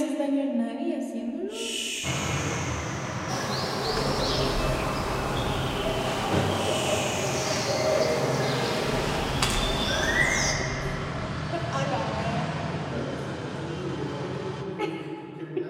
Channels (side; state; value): both; identical; correlation 1.00